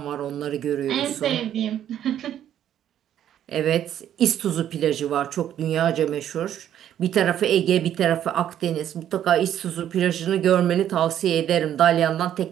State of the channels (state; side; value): quieter; left; 10.7 dB